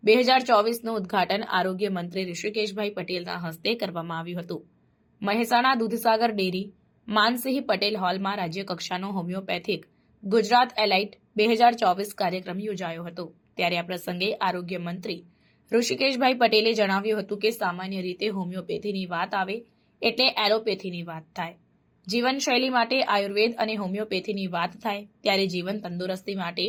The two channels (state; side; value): identical; both; correlation 1.00